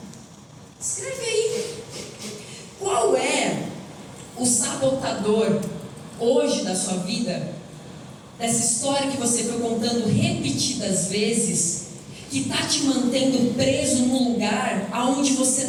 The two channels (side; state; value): both; identical; correlation 1.00